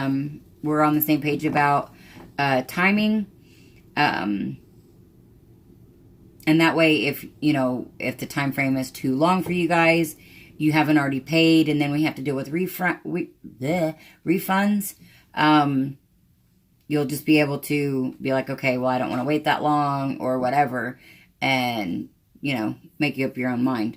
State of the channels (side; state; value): both; identical; correlation 1.00